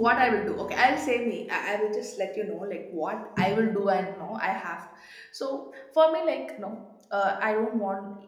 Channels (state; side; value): identical; both; correlation 1.00